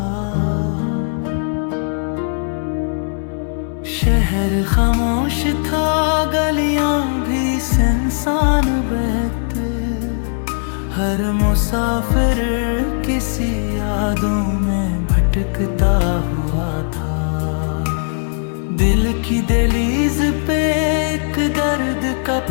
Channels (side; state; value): right; silent; digital silence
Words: शहर खामोश था, गलियां भी सुनसान बहते, हर मुसाफिर किसी यादों में भटकता हुआ था। दिल की दहलीज पे एक दर्द का